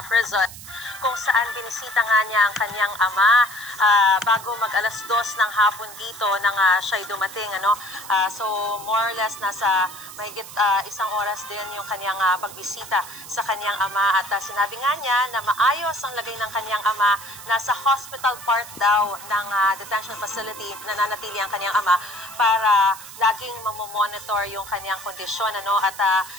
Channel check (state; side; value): noise; right; hiss, 15 dB below the sound